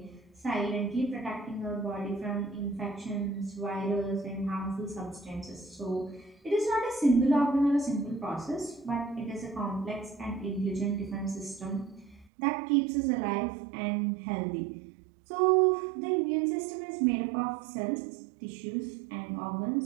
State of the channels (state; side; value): drops out; left; at 12.3 s